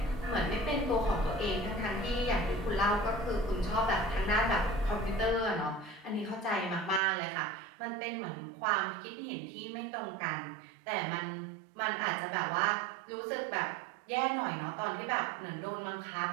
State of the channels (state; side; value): drops out; left; at 7.0 s